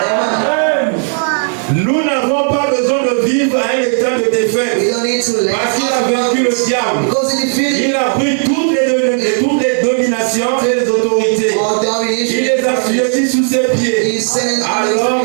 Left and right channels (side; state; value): left; silent; 60 dB below the other